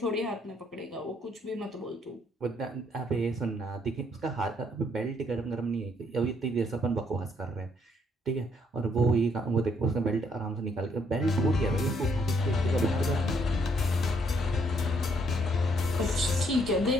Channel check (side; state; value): both; normal; correlation 0.69